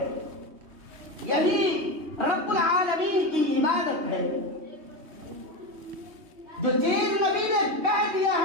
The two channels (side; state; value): left; late; 3.2 ms